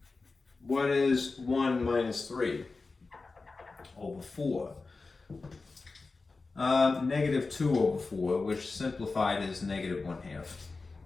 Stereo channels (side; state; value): right; quieter; 3.9 dB